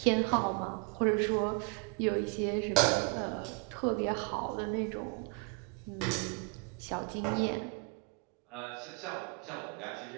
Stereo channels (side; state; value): left; quieter; 33.7 dB